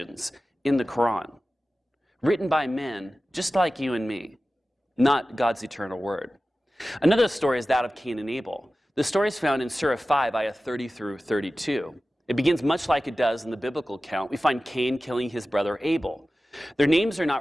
in the Quran, written by men just like you and me, not God's eternal word? Another story is that of Cain and Abel. The story is found in Surah 5, Ayah 30 through 32. It begins much like it does in the biblical account. We find Cain killing his brother Abel. Their names are not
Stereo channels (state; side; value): normal; both; correlation 0.95